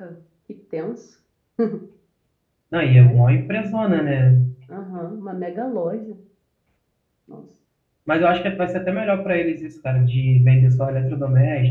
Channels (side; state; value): both; identical; correlation 1.00